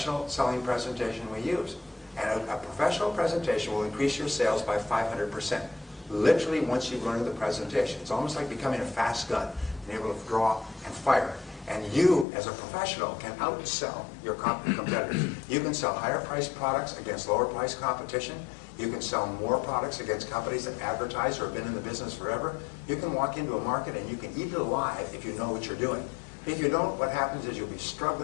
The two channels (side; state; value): right; drops out; at 12.2 s